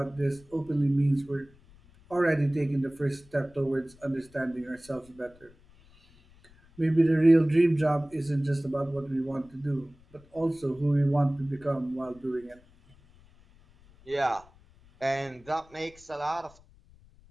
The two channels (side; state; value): left; noise; rumble, 27 dB below the sound